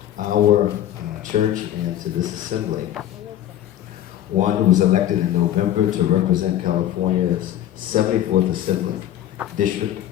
our church and to this assembly one who was elected in November to represent California's 74th Assembly District,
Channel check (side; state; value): right; quieter; 11.9 dB